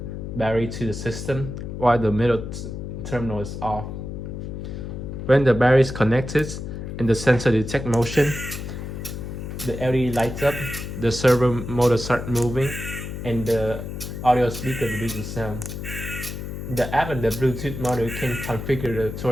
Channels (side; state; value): left; noise; hum, 7 dB below the sound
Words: battery to the system, while the middle terminal is off. When the battery is connected and the sensor detects motion, the LED lights up, the servo motor starts moving, and the audio speaker produces sound. The app and the Bluetooth module can configure the